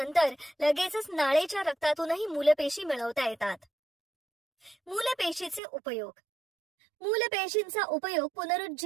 लगेचच नाळेच्या रक्तातूनही मूलपेशी मिळवता येतात. मूलपेशीचे उपयोग. मूलपेशींचा उपयोग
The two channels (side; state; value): left; drops out; at 5.6 s